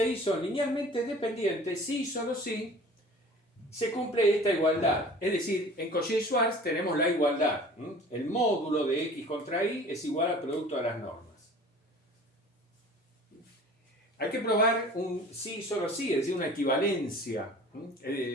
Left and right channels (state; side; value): normal; both; correlation 0.44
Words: y son linealmente dependientes si y solo si se cumple esta igualdad. Es decir, en Cauchy-Schwarz tenemos la igualdad. El módulo de x contra y es igual al producto de las normas. Hay que probar un sí y solo sí, es decir, una equivalencia.